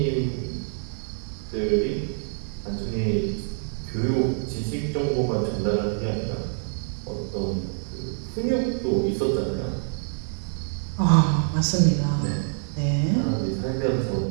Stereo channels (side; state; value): left; silent; digital silence